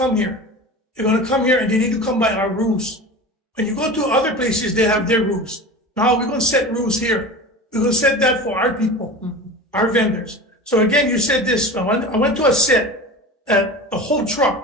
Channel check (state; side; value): normal; both; correlation 0.33